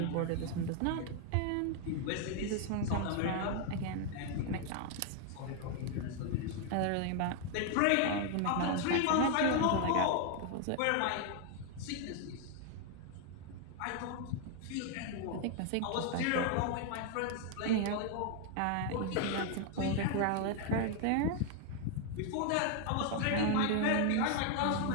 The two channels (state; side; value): different; both; correlation 0.01